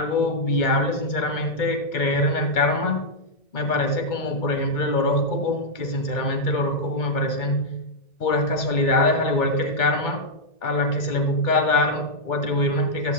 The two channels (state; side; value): late; right; 2.2 ms